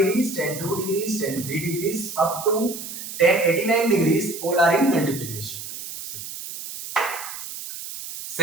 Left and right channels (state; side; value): noise; right; hiss, 10 dB below the sound